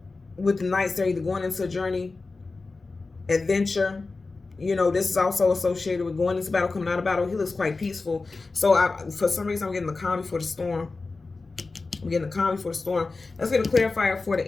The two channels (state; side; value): quieter; right; 3.8 dB